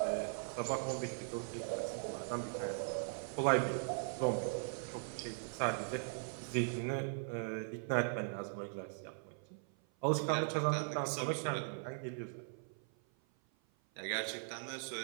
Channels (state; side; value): silent; left; 51 dB below the other